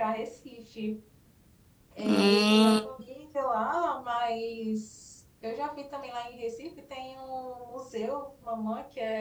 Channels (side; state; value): both; identical; correlation 1.00